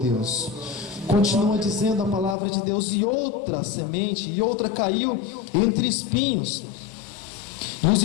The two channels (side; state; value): right; drops out; at 2.4 s